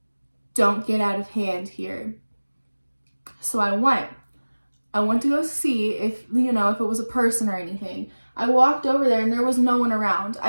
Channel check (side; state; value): both; inverted; correlation -1.00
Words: don't get out of hand here. So I went to go see if it was a person or anything. I walked over there, and there was no one around.